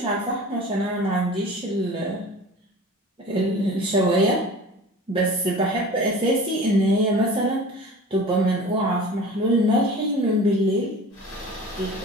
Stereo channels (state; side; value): normal; both; correlation 0.39